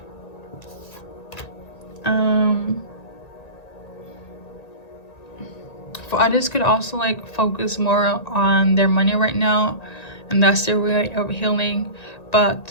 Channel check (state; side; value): late; right; 1.9 ms